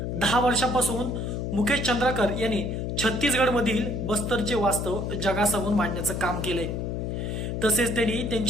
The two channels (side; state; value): left; noise; hum, 2 dB below the sound